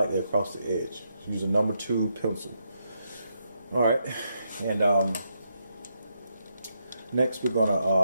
across the edge. Use a number 2 pencil. All right, and next we're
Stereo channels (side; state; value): both; inverted; correlation -0.80